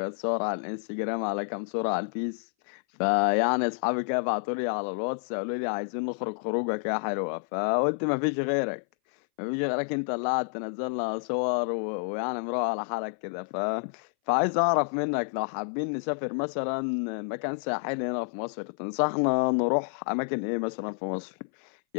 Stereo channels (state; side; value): silent; right; 59 dB below the other